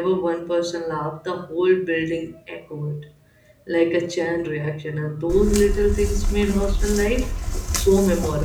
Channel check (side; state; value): both; identical; correlation 1.00